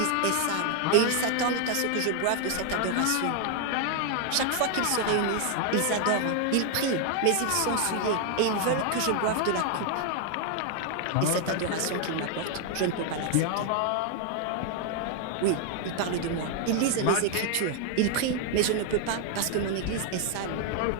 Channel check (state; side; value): different; both; correlation 0.00